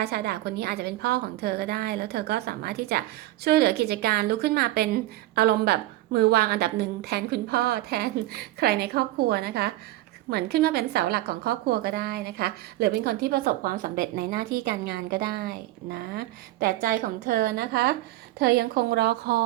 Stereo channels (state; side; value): quieter; left; 16.6 dB